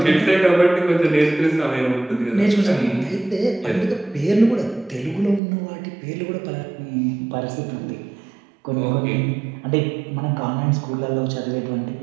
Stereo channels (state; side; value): drops out; left; at 5.4 s